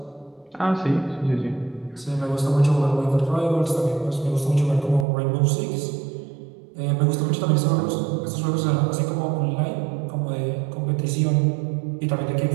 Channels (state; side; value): drops out; left; at 5.1 s